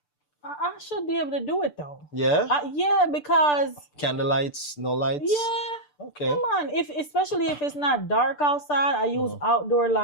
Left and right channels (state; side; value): late; right; 6.8 ms